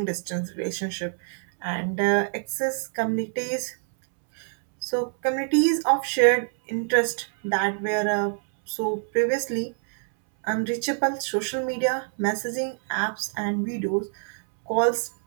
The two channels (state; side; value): silent; left; 61 dB below the other